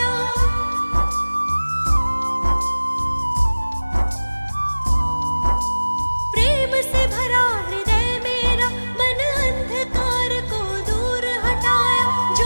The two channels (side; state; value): both; inverted; correlation -1.00